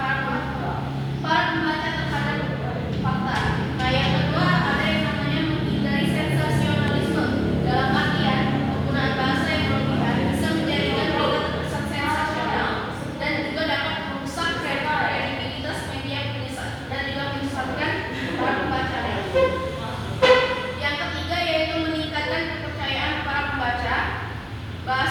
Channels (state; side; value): identical; both; correlation 1.00